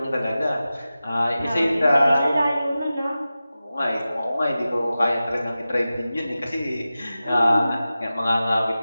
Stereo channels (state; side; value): inverted; both; correlation -0.95